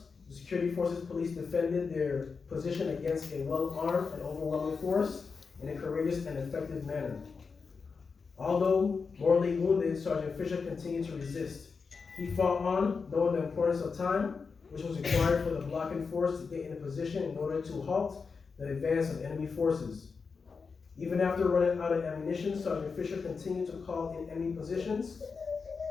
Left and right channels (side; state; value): right; quieter; 5.1 dB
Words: The security forces police defended their position against a well-armed and overwhelming force in a courageous and effective manner. Although mortally wounded, Sergeant Fisher continued to resist. He fought on, knowing the importance of time, which was required for the blocking force to get into position in order to halt the advance of enemy forces. Even after running out of ammunition, Sergeant Fisher continued to call in enemy positions